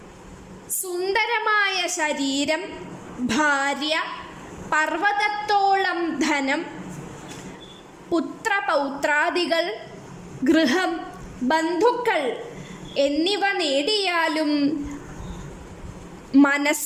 സുന്ദരമായ ശരീരം, ഭാര്യ, പർവ്വതത്തോളം ധനം, പുത്രപൗത്രാദികൾ, ഗൃഹം, ബന്ധുക്കൾ എന്നിവ നേടിയാലും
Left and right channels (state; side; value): identical; both; correlation 1.00